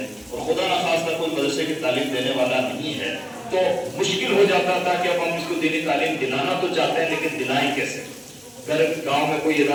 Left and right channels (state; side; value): identical; both; correlation 1.00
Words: اور خدا نخواستہ کوئی مدرسے کی تعلیم دینے والا نہیں ہے، تو مشکل ہو جاتا تھا کہ اب ہم اس کو دینی تعلیم دلانا تو چاہتے ہیں لیکن دلائیں کیسے؟ گاؤں میں کوئی